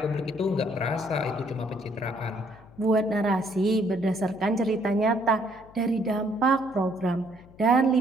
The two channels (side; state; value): left; noise; hum, 24 dB below the sound